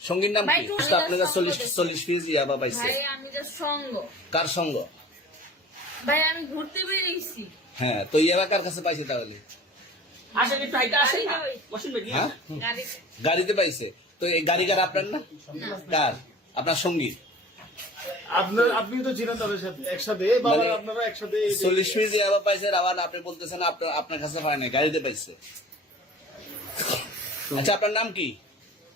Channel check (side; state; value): both; normal; correlation 0.43